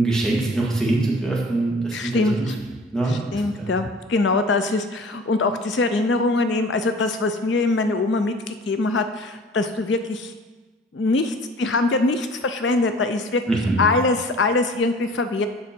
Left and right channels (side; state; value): both; normal; correlation 0.46